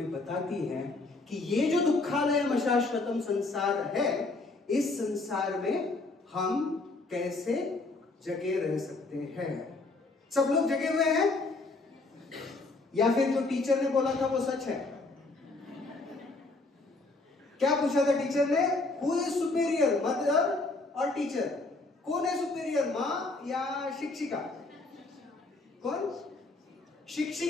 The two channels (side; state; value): right; quieter; 3.4 dB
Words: बताती है कि ये जो दुखालयम अशाश्वतम संसार है, इस संसार में हम कैसे जगे रह सकते हैं। सब लोग जगे हुए हैं, या फिर जो टीचर ने बोला था वो सच है? क्या पूछा था टीचर ने? हु इज सुपेरियर, मदर और टीचर? कौन है सुपेरियर, माँ या शिक्षिका? कौन?